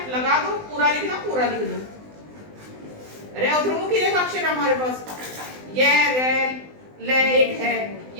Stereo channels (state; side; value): late; left; 20 ms